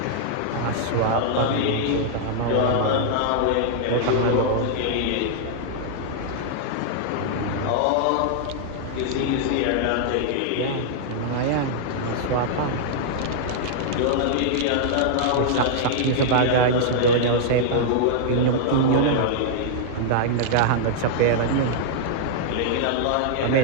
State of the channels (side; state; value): both; different; correlation -0.01